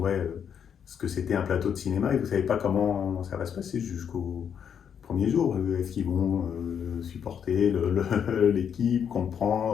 ce que c'était un plateau de cinéma, et vous ne savez pas comment ça va se passer jusqu'au premier jour. Est-ce qu'ils vont supporter l'équipe,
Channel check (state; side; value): quieter; right; 7.9 dB